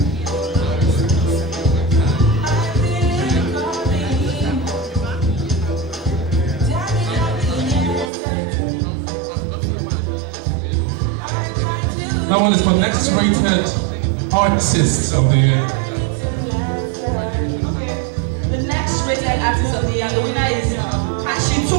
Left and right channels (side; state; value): left; drops out; at 8.1 s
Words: That one is for Next Rated Artist of the Year. The next rated artist of the year, and the winner is Kashi